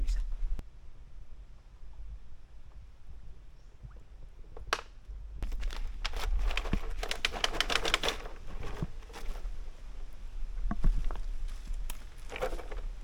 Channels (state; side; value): identical; both; correlation 1.00